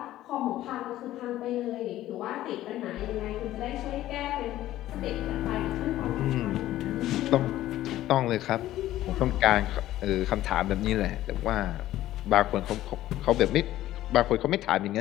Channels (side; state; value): right; quieter; 14.3 dB